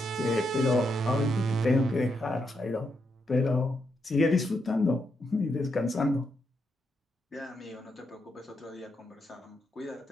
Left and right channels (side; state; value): both; normal; correlation 0.81